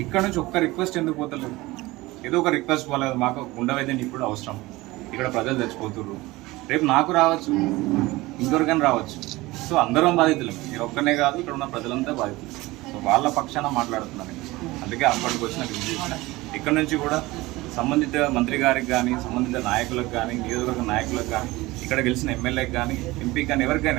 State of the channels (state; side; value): quieter; left; 20.2 dB